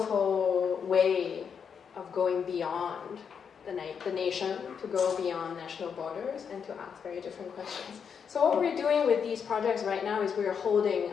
way of going beyond the nation, to go beyond national borders and to ask very different questions. So what we're doing with these projects right now is we're holding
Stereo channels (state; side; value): quieter; right; 6.9 dB